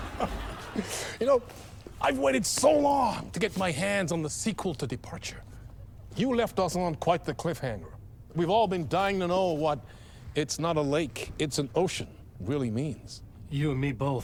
You know, I've waited so long to get my hands on the sequel to Departure. You left us on quite the cliffhanger. We've all been dying to know what "it's not a lake, it's an ocean" really means. You and me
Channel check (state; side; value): identical; both; correlation 1.00